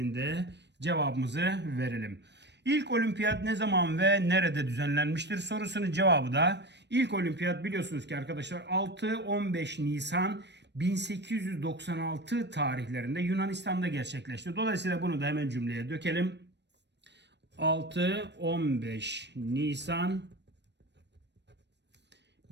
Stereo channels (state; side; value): late; left; 0.50 ms